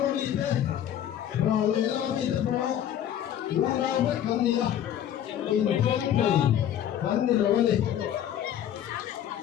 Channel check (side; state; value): right; quieter; 10.5 dB